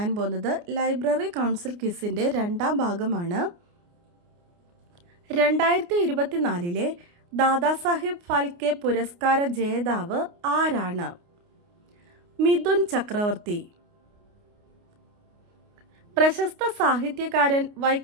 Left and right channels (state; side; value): late; left; 29 ms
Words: പോകുന്നത് ലൈബ്രറി കൗൺസിൽ ക്വിസിൻ്റെ രണ്ടാം ഭാഗമാണ്. 2024 ദാദാസാഹിബ് ഫാൽക്കെ പുരസ്കാര ജേതാവ് ആരാണ്? മിഥുൻ ചക്രവർത്തി. പ്രശസ്ത സാഹിത്യകാരൻ